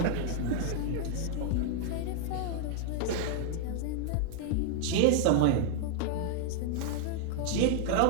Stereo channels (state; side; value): different; both; correlation -0.01